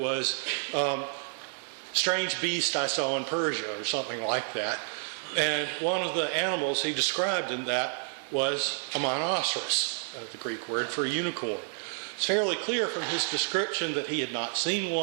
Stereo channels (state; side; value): silent; left; 55 dB below the other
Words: Strange Beast I Saw in Persia, or something like that. And one of the animals he described in that was a monoceros, the Greek word for a unicorn. It's fairly clear from his description that he had not seen